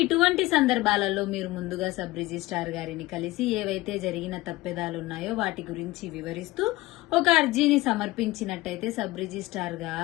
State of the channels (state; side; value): quieter; right; 18.8 dB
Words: ఇటువంటి సందర్భాలలో మీరు ముందుగా సబ్ రిజిస్ట్రార్ గారిని కలిసి ఏవైతే జరిగిన తప్పిదాలు ఉన్నాయో వాటి గురించి వివరిస్తూ ఒక అర్జీని సమర్పించినట్టయితే సబ్ రిజిస్ట్రార్